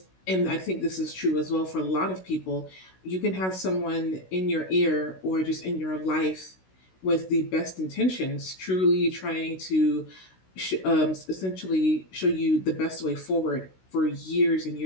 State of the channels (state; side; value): late; right; 16 ms